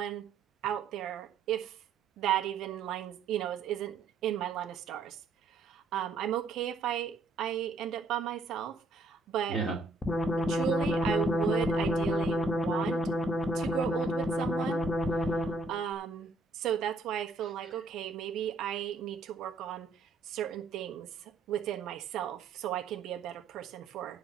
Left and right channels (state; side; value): quieter; left; 3.4 dB